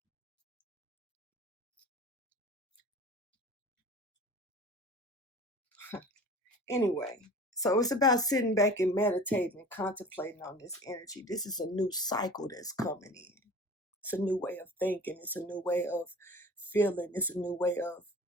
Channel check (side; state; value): both; normal; correlation 0.40